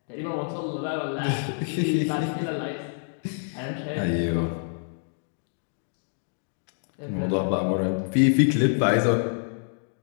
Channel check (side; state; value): right; silent; digital silence